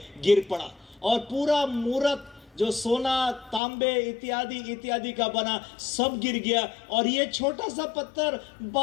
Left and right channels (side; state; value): right; drops out; at 3.6 s